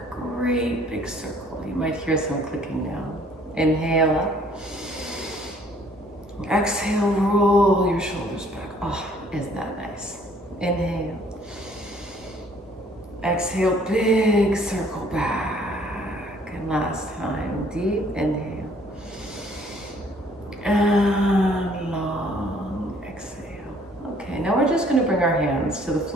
great big circle. You might hear some clicking now. Inhale up. Exhale, roll your shoulders back. Oh, isn't that nice? Inhale. Exhale, big circle back. And last time, deep inhale. And long exhale. Okay, now we're just going to bring our hands to the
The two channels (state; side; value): normal; both; correlation 0.59